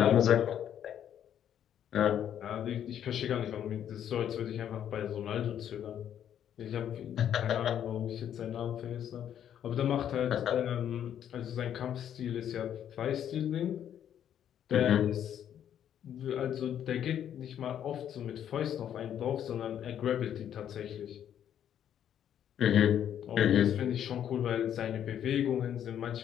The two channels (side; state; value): right; quieter; 9.9 dB